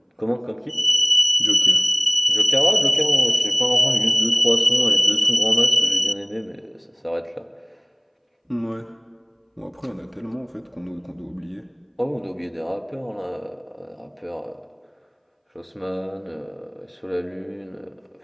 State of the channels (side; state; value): both; identical; correlation 1.00